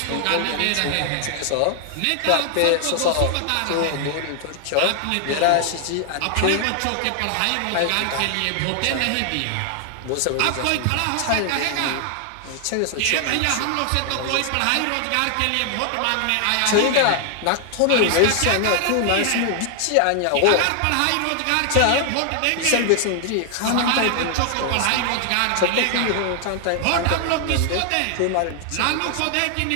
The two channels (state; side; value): different; both; correlation 0.00